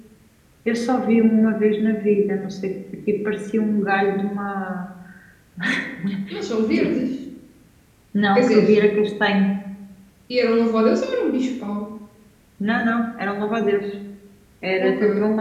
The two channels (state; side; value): identical; both; correlation 1.00